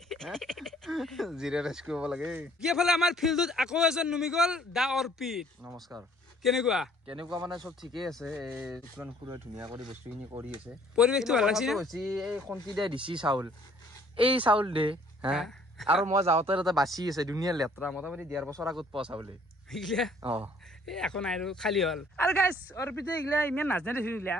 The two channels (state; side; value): normal; both; correlation 0.59